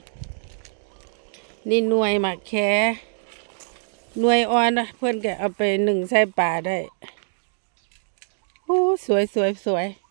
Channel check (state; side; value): silent; left; digital silence